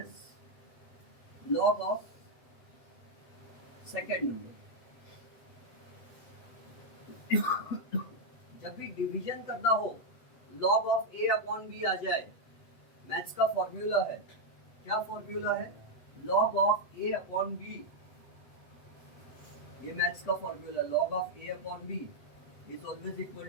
log of second number. जब भी डिवीजन करना हो, log of a upon b आ जाए, मैथ्स का फॉर्मूला है। क्या फॉर्मूला है? Log of a upon b, ये मैथ्स का formula, log of a upon b is always equal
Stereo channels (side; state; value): right; late; 8.0 ms